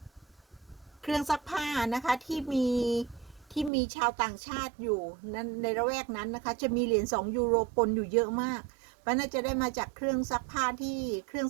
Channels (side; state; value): left; drops out; at 3.7 s